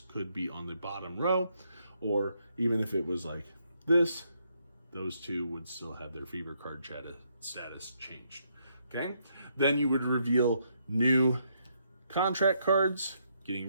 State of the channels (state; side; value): inverted; both; correlation -0.75